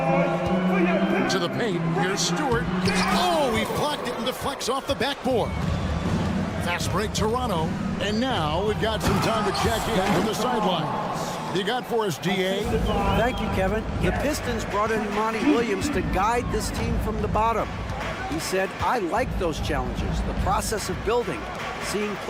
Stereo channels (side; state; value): both; identical; correlation 1.00